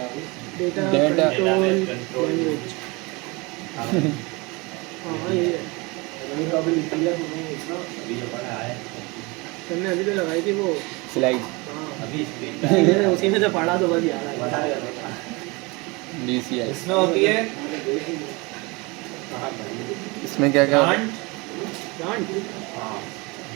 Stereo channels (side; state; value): left; quieter; 26.3 dB